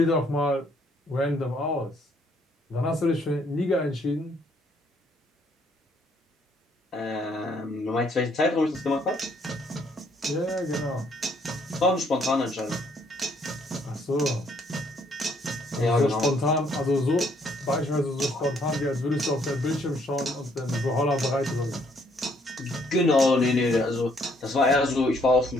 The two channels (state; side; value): normal; both; correlation 0.67